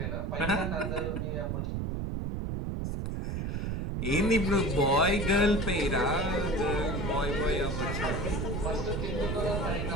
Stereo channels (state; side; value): noise; right; rumble, 2 dB below the sound